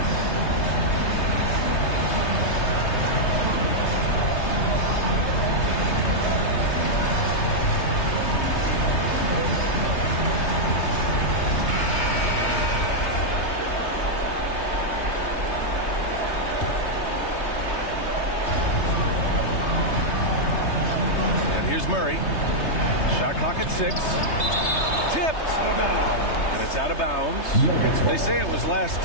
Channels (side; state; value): right; late; 3.3 ms